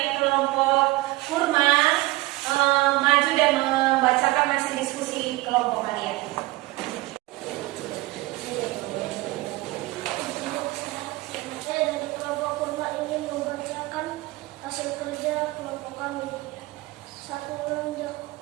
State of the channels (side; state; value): left; quieter; 20.1 dB